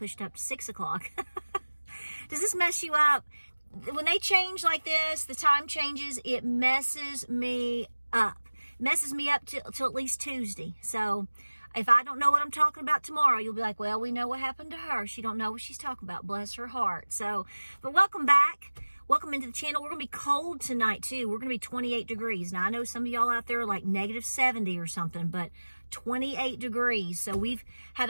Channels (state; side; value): inverted; both; correlation -1.00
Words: up to 6 o'clock. Does this mess you up? When they change like this, the time changes, it messes me up. Messes me up till at least Tuesday. So if I don't know what I'm talking about tomorrow, you'll be like, well, we know what happened to her. She don't know what she's talking about. Bless her heart. So, but welcome back. Welcome into the channel. We're going to be cold tonight too. We're going to be 28 degrees. Now I know some of y'all out there are like negative 70 or something, but 28 degrees. So we've had